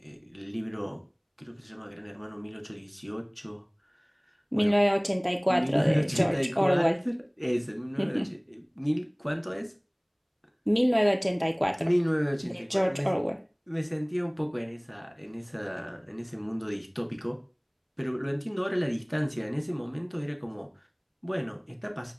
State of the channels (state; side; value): identical; both; correlation 1.00